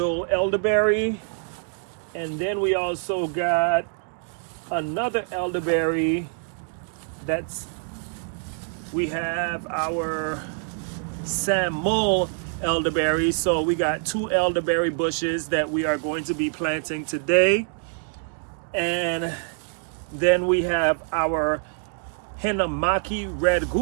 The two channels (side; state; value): left; silent; 62 dB below the other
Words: elderberry, and then we also got another elderberry. We have our Samdol elderberry. So we got 2 elderberry bushes that we are going to be planting today. And then we have our Hinamaki red